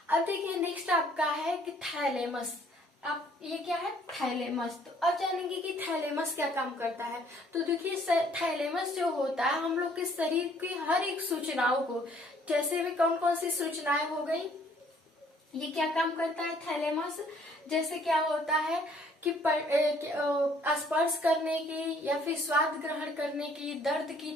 अब देखिए नेक्स्ट आपका है कि थैलेमस। अब ये क्या है, थैलेमस। तो अब जानेंगे कि थैलेमस क्या काम करता है। तो देखिए थैलेमस जो होता है हम लोग के शरीर की हर एक सूचनाओं को, जैसे भी कौन कौन सी सूचनाएं हो गई, ये क्या काम करता है थैलेमस। जैसे क्या होता है कि स्पर्श करने की या फिर स्वाद ग्रहण करने की, दर्द की,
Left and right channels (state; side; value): normal; both; correlation 0.61